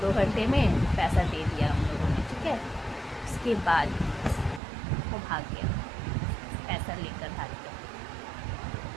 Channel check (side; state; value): left; drops out; at 4.6 s